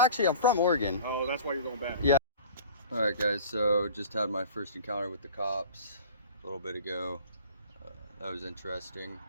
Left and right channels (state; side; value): inverted; both; correlation -0.43